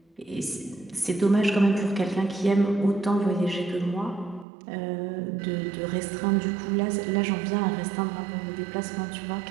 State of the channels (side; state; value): left; drops out; at 4.5 s